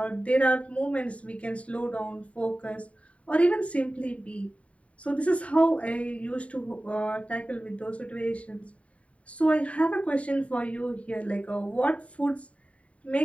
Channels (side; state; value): right; late; 0.065 ms